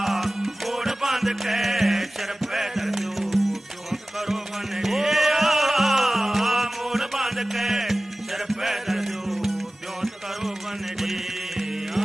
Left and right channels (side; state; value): both; normal; correlation 0.97